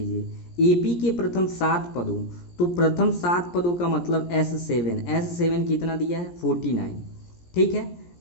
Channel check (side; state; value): right; late; 17 ms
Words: एपी के प्रथम 7 पदों, तो प्रथम 7 पदों का मतलब S7 कितना दिया है 49। ठीक है,